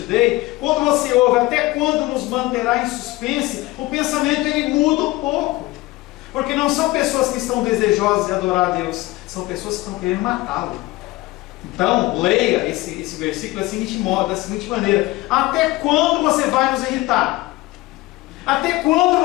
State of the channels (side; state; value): right; quieter; 19.6 dB